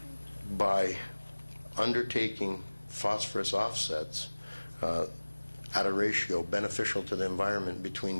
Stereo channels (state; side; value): inverted; both; correlation -1.00